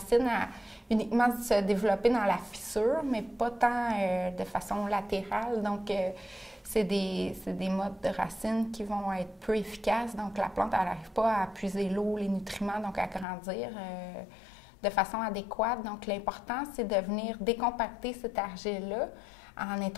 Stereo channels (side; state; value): right; drops out; at 13.2 s